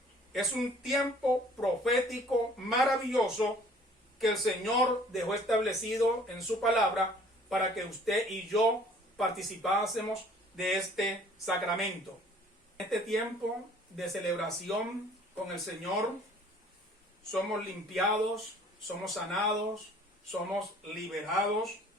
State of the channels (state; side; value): normal; both; correlation 0.54